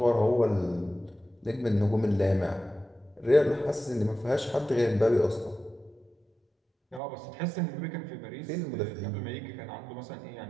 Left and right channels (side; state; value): left; drops out; at 7.0 s